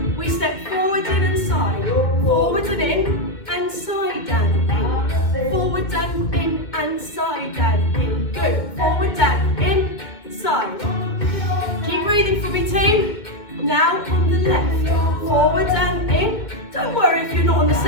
We step forward in and side, forward and in, and side and in. Forward and in, and side and in. Good. Forward and in, side. Keep breathing for me, team. Now on the left, forward and in. Don't worry if you're not on the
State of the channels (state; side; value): late; right; 2.2 ms